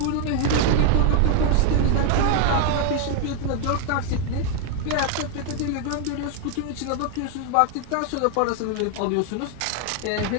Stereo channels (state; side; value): different; both; correlation 0.00